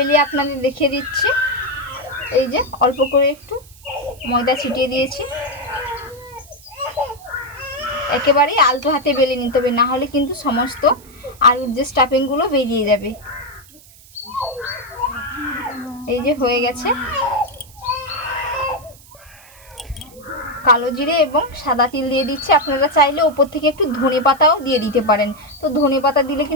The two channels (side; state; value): right; noise; hiss, 24 dB below the sound